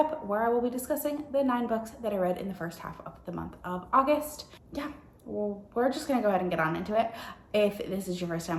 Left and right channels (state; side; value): identical; both; correlation 1.00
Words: where I will be discussing the 9 books that I read in the first half of the month of August. Yeah, well, we're just gonna go ahead and get on into it. If this is your first